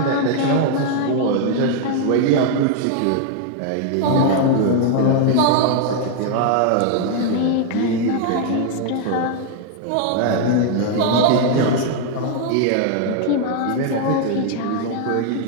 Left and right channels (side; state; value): both; different; correlation 0.00